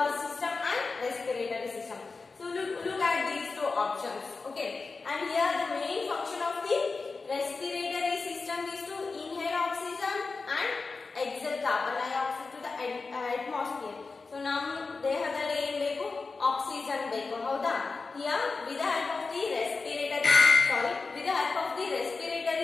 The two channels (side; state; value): right; quieter; 4.2 dB